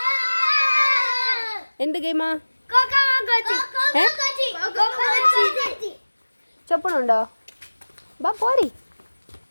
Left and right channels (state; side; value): inverted; both; correlation -1.00